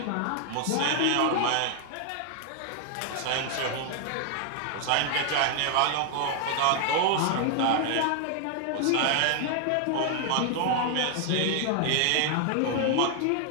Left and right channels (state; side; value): different; both; correlation 0.00